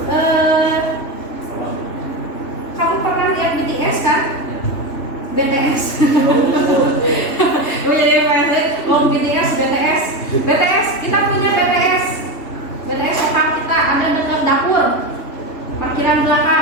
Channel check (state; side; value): late; right; 3.1 ms